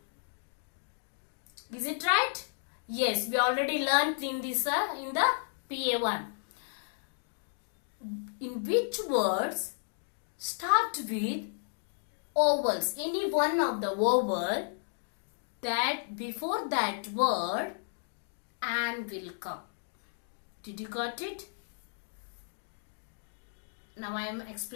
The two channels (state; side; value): silent; right; digital silence